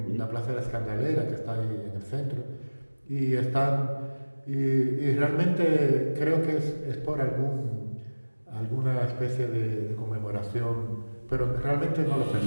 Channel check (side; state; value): both; inverted; correlation -1.00